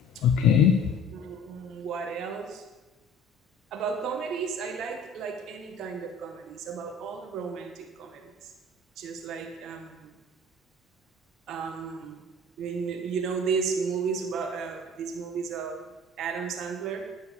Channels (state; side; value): normal; both; correlation 0.46